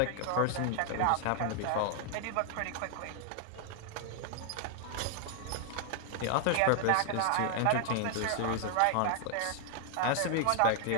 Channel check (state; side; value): different; both; correlation 0.00